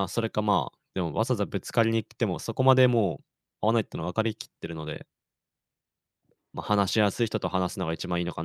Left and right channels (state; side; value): identical; both; correlation 1.00